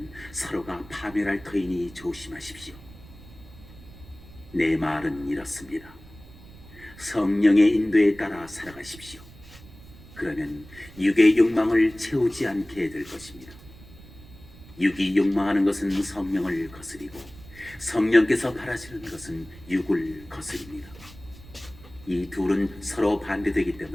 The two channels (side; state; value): right; noise; rumble, 20 dB below the sound